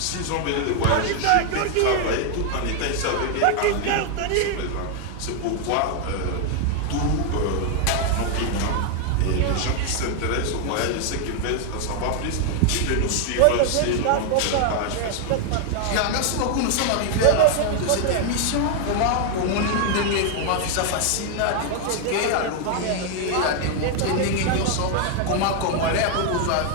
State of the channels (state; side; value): different; both; correlation 0.00